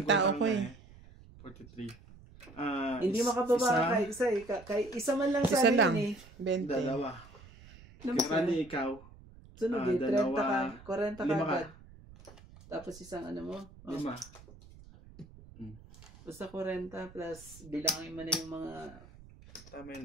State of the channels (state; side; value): noise; right; rumble, 21 dB below the sound